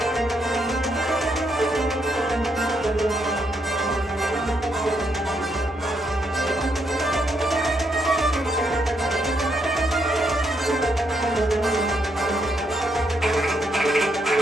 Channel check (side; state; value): both; normal; correlation 0.77